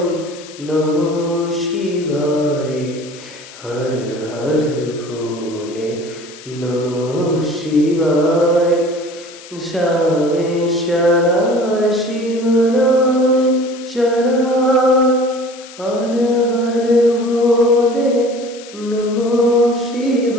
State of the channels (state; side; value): noise; left; hiss, 18 dB below the sound